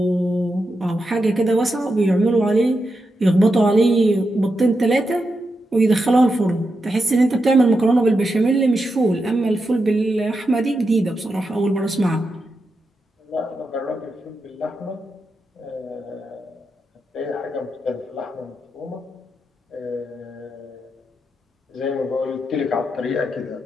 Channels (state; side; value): normal; both; correlation 0.87